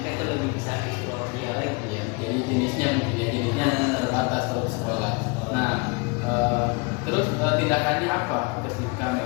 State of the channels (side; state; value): right; quieter; 29.6 dB